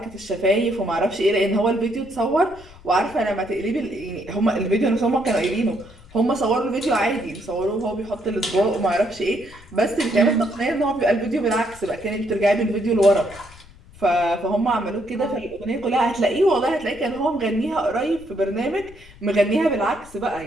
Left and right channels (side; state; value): left; noise; rumble, 21 dB below the sound